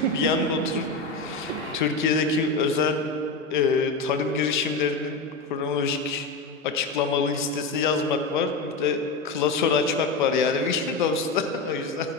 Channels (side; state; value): right; quieter; 3.7 dB